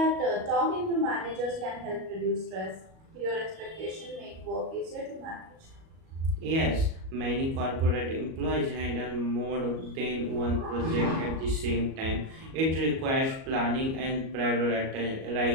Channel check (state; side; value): late; left; 37 ms